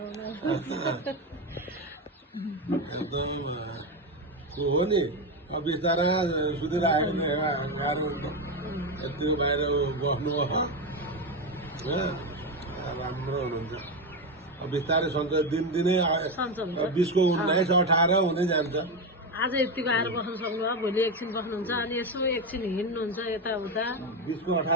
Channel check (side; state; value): both; normal; correlation 0.13